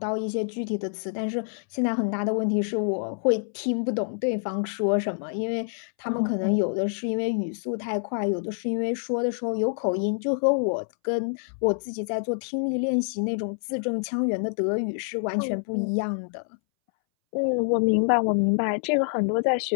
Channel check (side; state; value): right; silent; 61 dB below the other